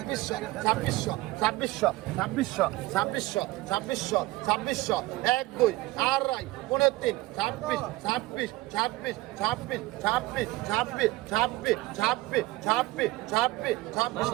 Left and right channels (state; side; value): quieter; left; 19.3 dB